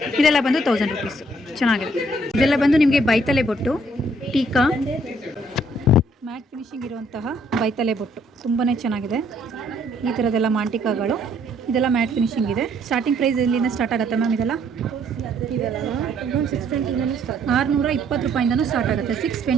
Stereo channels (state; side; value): normal; both; correlation 0.65